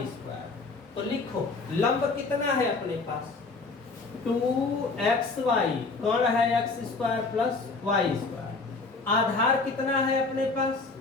स्क्वायर, तो लिखो लंब कितना है अपने पास 2xy, कर्ण है x square plus Y square, आधार कितना है अपने पास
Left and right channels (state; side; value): quieter; right; 3.9 dB